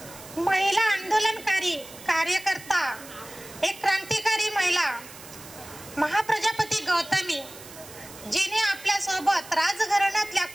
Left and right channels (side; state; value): right; noise; hiss, 17 dB below the sound